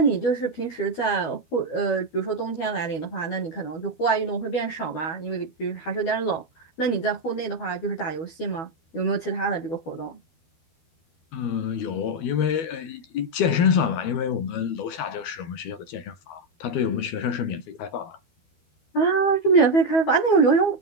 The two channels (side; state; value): right; late; 12 ms